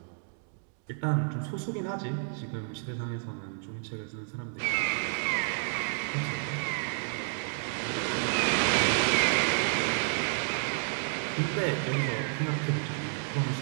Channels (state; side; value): silent; left; 57 dB below the other